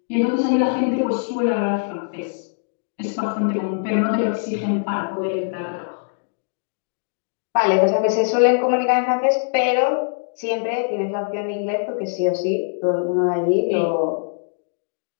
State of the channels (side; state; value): right; silent; digital silence